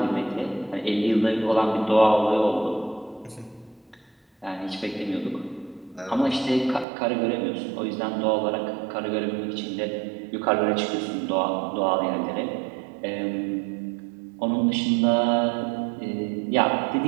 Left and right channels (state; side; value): drops out; left; at 6.9 s